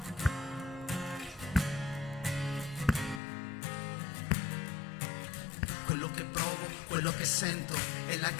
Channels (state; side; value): drops out; right; at 3.2 s